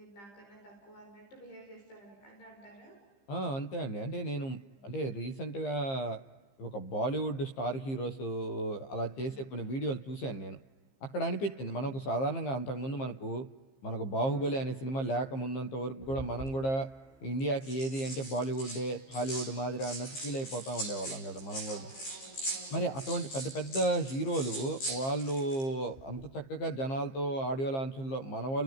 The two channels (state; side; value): late; right; 15 ms